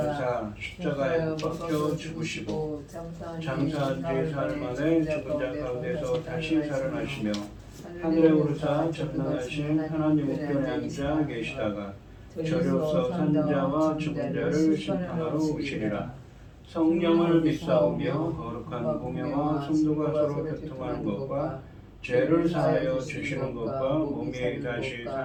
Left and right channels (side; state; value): both; identical; correlation 1.00